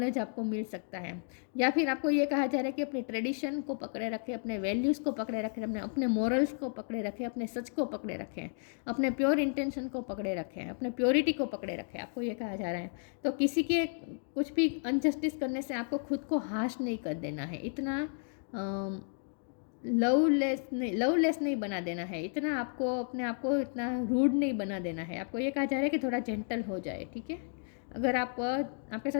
आपको मिल सकता है। या फिर आपको ये कहा जा रहा है कि अपने ट्रेडिशन को पकड़े रखें, अपने वैल्यूज़ को पकड़े रखें, अपने मोरल्स को पकड़े रखें, अपने सच को पकड़े रखें, अपने प्योर इंटेंशन को पकड़े रखें, अपने प्योरिटी को पकड़े रखें, आपको ये कहा जा रहा है। तो किसी के कुछ भी अनजस्टिस करने से आपको खुद को हाश नहीं कर देना है, इतना लवलेस नहीं बना देना है, इतना आपको अपने आप को इतना रूड नहीं बना देना है। आपको ये कहा जा रहा है कि थोड़ा जेंटल हो जाए, ठीक है। अगर आपके साथ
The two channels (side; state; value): right; silent; 56 dB below the other